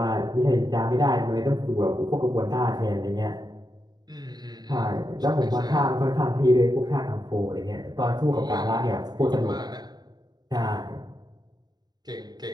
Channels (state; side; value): late; left; 0.20 ms